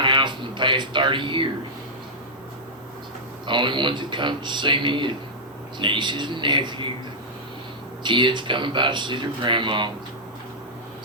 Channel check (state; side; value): normal; both; correlation -0.08